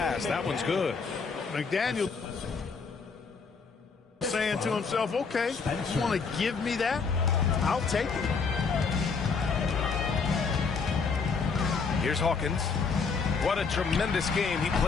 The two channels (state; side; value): quieter; right; 5.1 dB